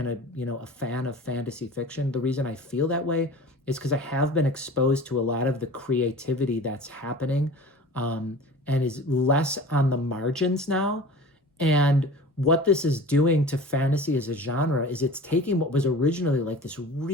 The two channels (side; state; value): both; normal; correlation 0.39